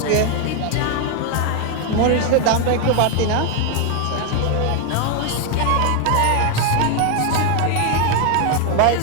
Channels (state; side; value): different; both; correlation 0.01